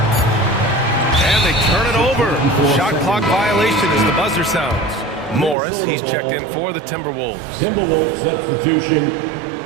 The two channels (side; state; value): left; drops out; at 5.6 s